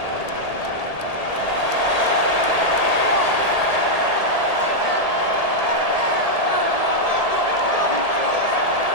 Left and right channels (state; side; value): late; right; 1.8 ms